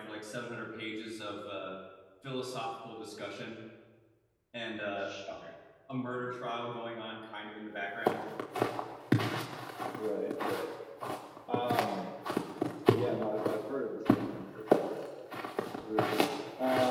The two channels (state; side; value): identical; both; correlation 1.00